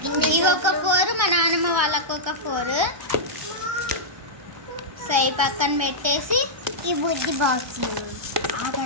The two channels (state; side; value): late; left; 1.3 ms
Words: ఇవి ఒక 4, మా నాన్నమ్మ వాళ్ళకు ఒక 4. సో ఈ పక్కన పెట్టేసి ఈ బుజ్జి బాక్స్